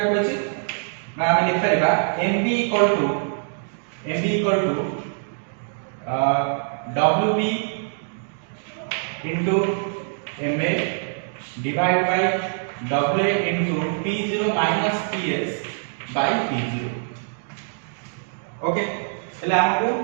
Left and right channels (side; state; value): left; silent; 63 dB below the other